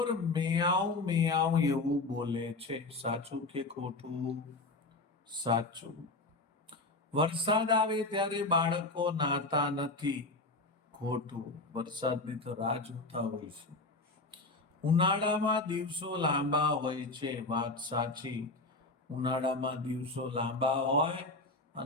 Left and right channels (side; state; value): right; quieter; 3.1 dB